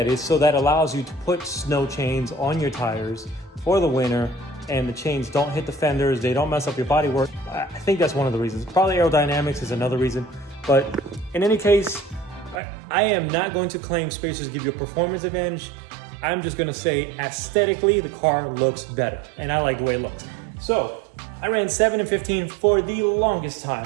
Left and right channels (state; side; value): drops out; left; at 12.6 s